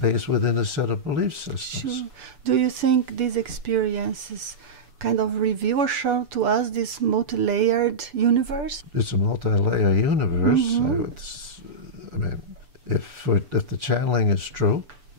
within a set of belief systems. Sure. Do you think these experiences kind of reveal or show to us this multi-layered universe? It's a multi-layer universe. I mean, if the channeling is true,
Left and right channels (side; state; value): left; late; 6.9 ms